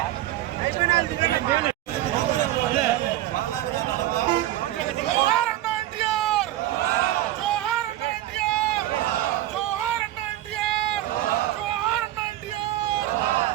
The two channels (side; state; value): left; quieter; 14.5 dB